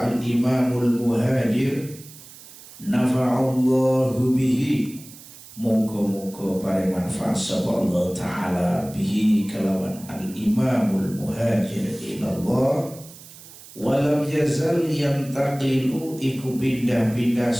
al-Imamul Muhajir nafa'allahu bihi, moga-moga paring manfaat sapa Allah taala bihi kelawan al-Imamul Muhajir ilallah. Walam yazal yantaqilu iku pindah-pindah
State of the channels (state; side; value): noise; right; hiss, 19 dB below the sound